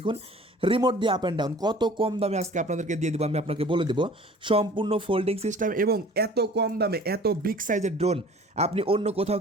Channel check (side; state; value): both; normal; correlation 0.47